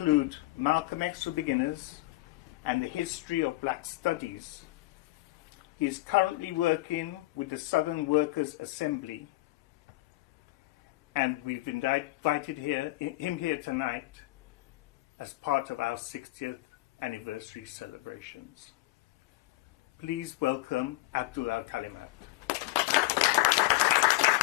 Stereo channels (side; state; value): right; quieter; 19.1 dB